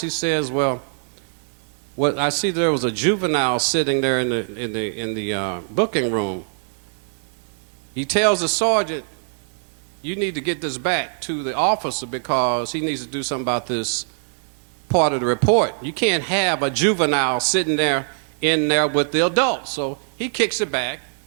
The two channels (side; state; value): left; silent; digital silence